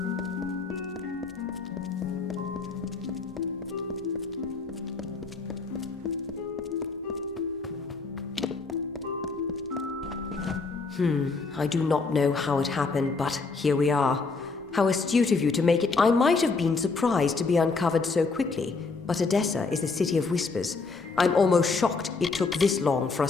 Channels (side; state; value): right; quieter; 4.2 dB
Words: I do not know how it happened, but here we are. How astute of you to make it. I might have been surprised to be uncovered so quickly, but Edessa is a city of whispers. I'm almost shocked it took this long for